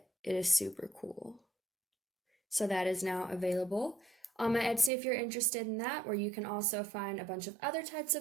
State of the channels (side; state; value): left; drops out; at 4.9 s